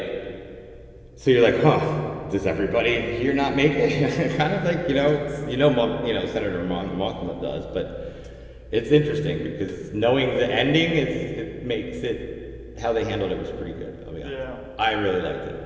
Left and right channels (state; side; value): identical; both; correlation 1.00